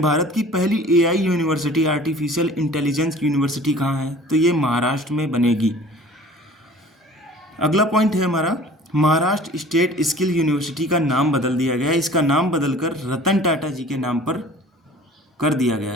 भारत की पहली AI university, artificial intelligence university कहाँ है? तो ये महाराष्ट्र में बनेगी। अगला पॉइंट है हमारा, महाराष्ट्र स्टेट स्किल यूनिवर्सिटी का नाम बदल दिया गया है। इसका नाम बदलकर रतन टाटा जी के नाम पर कर दिया गया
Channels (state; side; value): normal; both; correlation 0.46